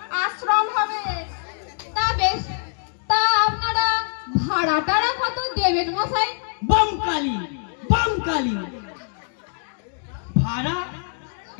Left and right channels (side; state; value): right; silent; 61 dB below the other